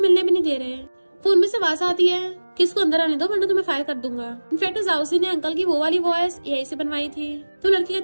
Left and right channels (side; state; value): both; inverted; correlation -1.00